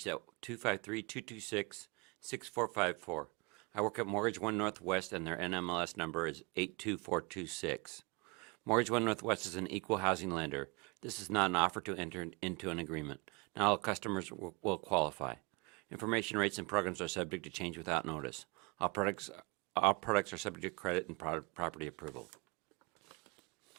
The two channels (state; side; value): quieter; left; 28.6 dB